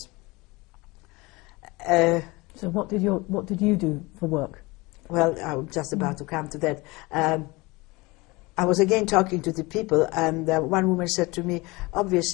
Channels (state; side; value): quieter; right; 23.5 dB